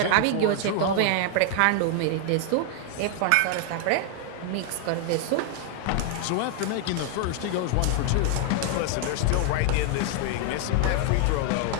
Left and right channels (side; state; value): both; different; correlation 0.00